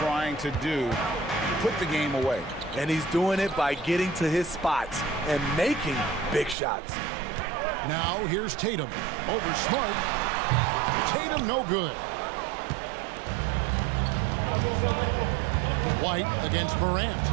to do. Put the game away. And he's doing it by getting to his spots and making big shots. Now here's Tatum. Over Smart. Tatum no good. White against Morant.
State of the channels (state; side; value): drops out; left; at 6.6 s